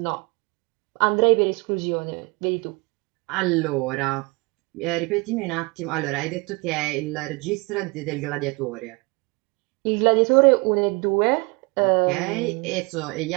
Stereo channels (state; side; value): quieter; left; 28.3 dB